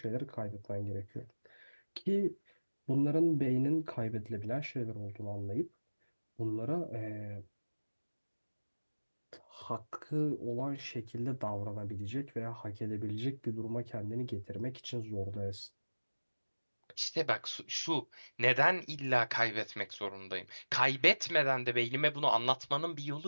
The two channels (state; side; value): inverted; both; correlation -1.00